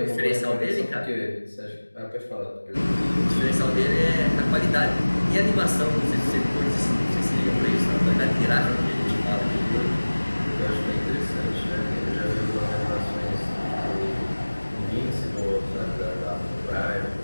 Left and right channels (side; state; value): both; inverted; correlation -1.00